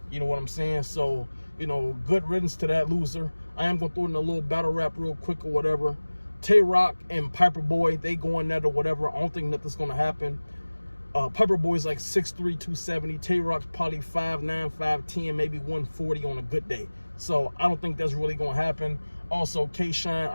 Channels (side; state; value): both; inverted; correlation -1.00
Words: You know what I'm saying? So, you know, good riddance to that loser. I am going to throw in a little battle rap real quick or whatever. Tay-Rock and Piper Boy, they going at or whatever. I don't think nothing's going to happen. Piper Boy's like 6'3", 270. Tay-Rock's probably 5'9", 5'10", maybe 140 on a good day. So I don't think that's really going to happen. Also, K-Shine,